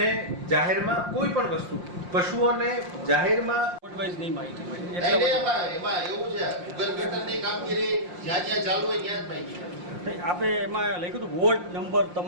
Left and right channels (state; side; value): late; left; 5.7 ms